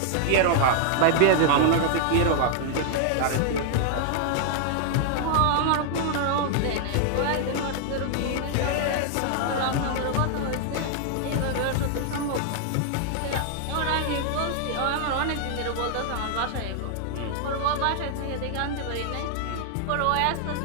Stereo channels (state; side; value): different; both; correlation 0.00